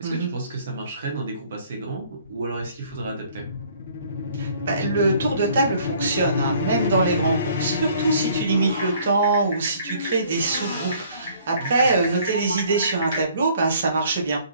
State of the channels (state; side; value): inverted; both; correlation -0.58